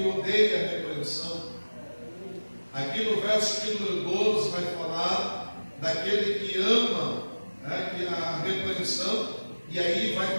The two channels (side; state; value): both; inverted; correlation -1.00